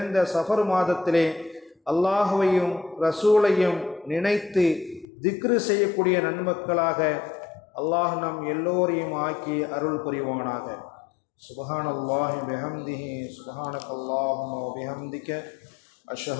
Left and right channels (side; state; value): right; drops out; at 5.1 s